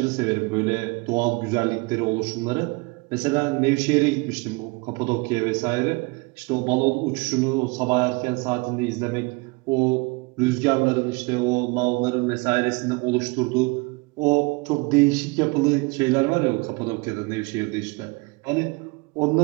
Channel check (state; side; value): quieter; left; 27.2 dB